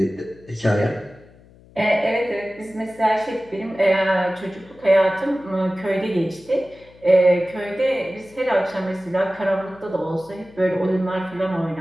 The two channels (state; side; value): noise; left; hum, 25 dB below the sound